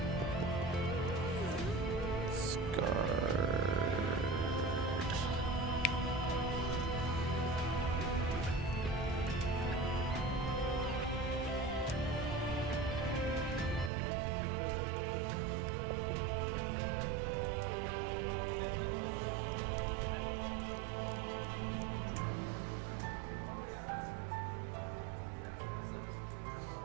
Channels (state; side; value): drops out; left; at 13.9 s